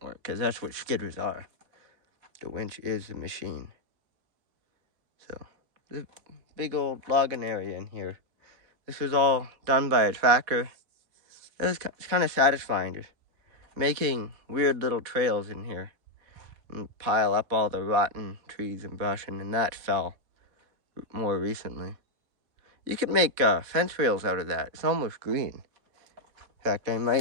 work, because that's what skidders are. The winch is the machine. So, there's a big old logging area in here. This was all done by a tractor. It's kind of satisfying, just making weird little trails in here and pile up all the rotten trees and brush, and that fell more recently. You could make fence rails out of that. It's almost green. In fact,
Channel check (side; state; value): left; late; 4.1 ms